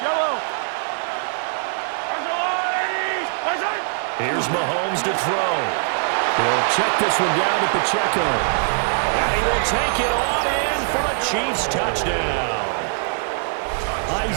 Here's Mahomes to throw. He'll check this one down to Pacheco. And he will take it on in for a Chiefs touchdown.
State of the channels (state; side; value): silent; left; 57 dB below the other